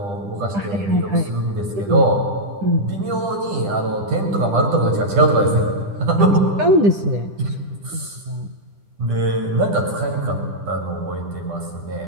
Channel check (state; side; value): late; left; 10 ms